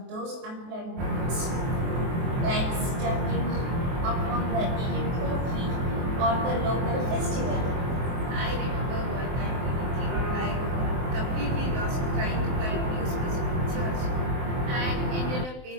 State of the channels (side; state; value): left; late; 23 ms